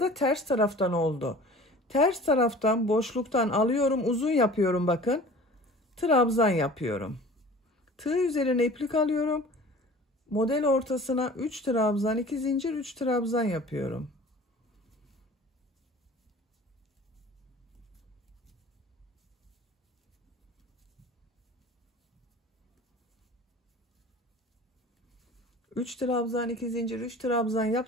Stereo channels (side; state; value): both; normal; correlation 0.44